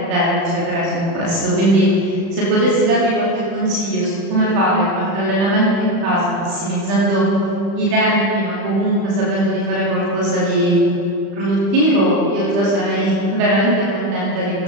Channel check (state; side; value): late; left; 35 ms